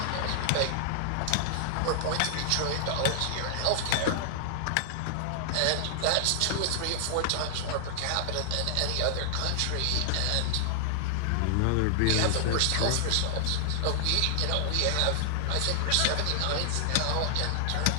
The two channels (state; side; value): different; both; correlation -0.01